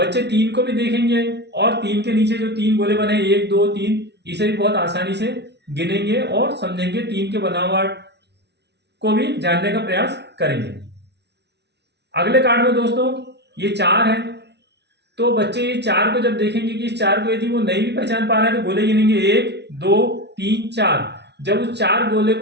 तीन को भी देखेंगे और तीन के नीचे जो तीन गोले बने एक दो तीन, इसे भी बहुत आसानी से गिनेंगे और समझेंगे, तीन के बनावट को भी जानने का प्रयास करेंगे। अगले कार्ड में दोस्तों ये चार है, तो बच्चे ये चार को जब देखेंगे कि इस चार को यदि वो नहीं भी पहचान पा रहे हैं तो गोले गिनेंगे एक दो तीन चार। जब उस चार गोले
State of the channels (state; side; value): late; left; 0.50 ms